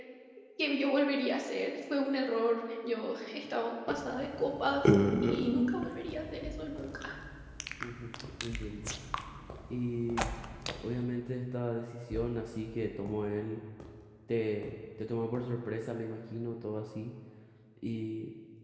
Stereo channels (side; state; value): both; identical; correlation 1.00